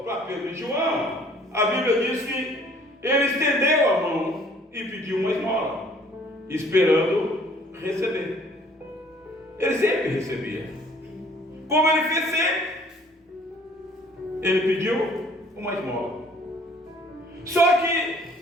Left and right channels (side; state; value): both; normal; correlation 0.57